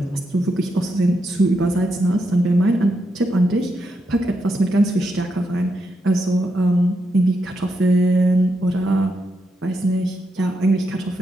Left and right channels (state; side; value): normal; both; correlation 0.82